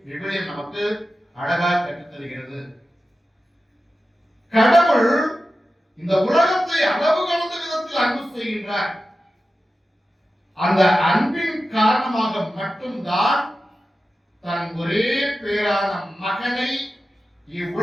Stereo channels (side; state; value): both; normal; correlation 0.93